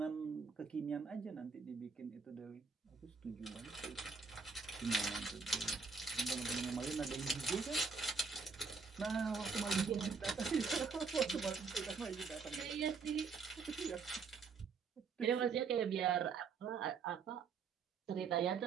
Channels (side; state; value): left; quieter; 5.0 dB